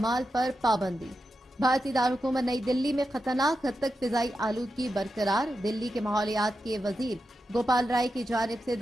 पर पाबंदी। भारतीय दारकूमत नई दिल्ली में खतरनाक हद तक फिजाई आलूदगी बरकरार। दिल्ली के माहौलियात के वजीर गोपाल राय की जानिब से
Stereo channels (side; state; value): both; normal; correlation 0.89